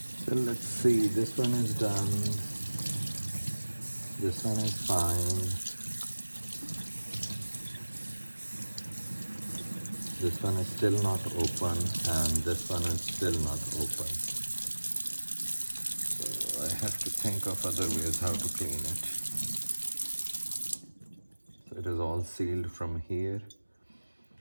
So let's see, this one is done, this one is fine, this one is still not open, and this one is still not open. So I have to think of other ways how to clean it. So it is all sealed from here.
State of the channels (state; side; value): inverted; both; correlation -1.00